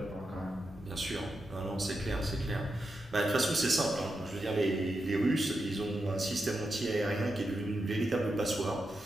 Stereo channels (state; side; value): normal; both; correlation 0.87